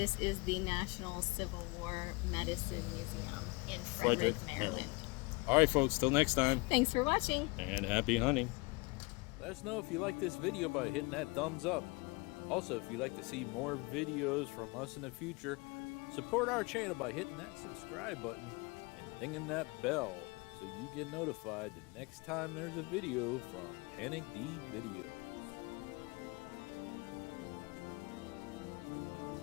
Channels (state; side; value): quieter; right; 26.6 dB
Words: is the National Civil War Medicine Museum in Frederick, Frederick, Maryland. All right, folks, till next time, Thanks for watching. and happy hunting. Let us know if you like this video by hitting that thumbs up. Also, if you'd like to see more videos from us in the future, support our channel by hitting that subscribe button and dinging that bell so you get notified the next time there's a video from Panic D Videos.